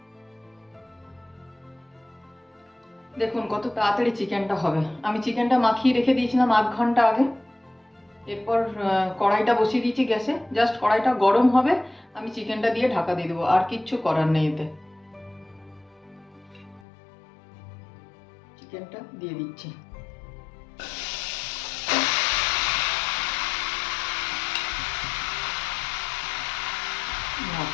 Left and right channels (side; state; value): right; drops out; at 16.8 s